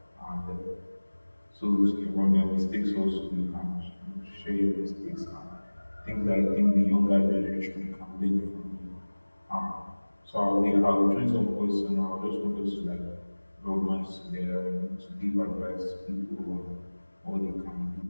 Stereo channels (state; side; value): inverted; both; correlation -1.00